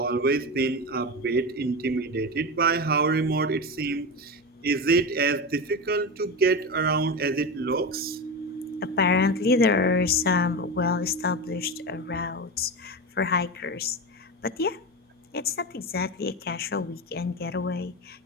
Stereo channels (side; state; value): both; normal; correlation 0.21